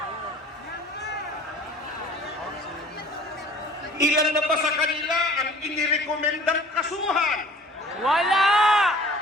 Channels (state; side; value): normal; both; correlation 0.48